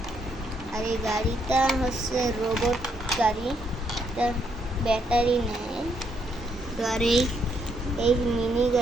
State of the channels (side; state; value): both; normal; correlation 0.74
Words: আর এই গাড়িটা হচ্ছে রোবট গাড়ি, এটা ব্যাটারি নেয়। তো আর এই মিনি